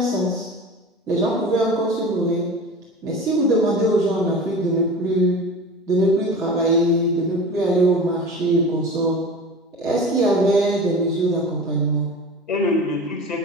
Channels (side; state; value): both; normal; correlation 0.35